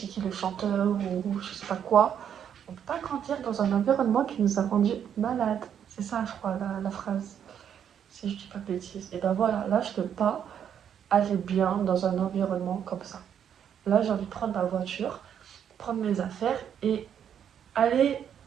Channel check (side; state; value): left; quieter; 8.8 dB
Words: qui le chanteur ou je sais pas quoi, on peut pas grandir dans un environnement qui nous a rendu malades. C'est ça, je crois, la phrase. Si je dis pas de bêtises. Et ben voilà, là, je peux pas aller bien dans un environnement comme ça. Là, j'ai envie de prendre ma voiture, prendre mes affaires et aller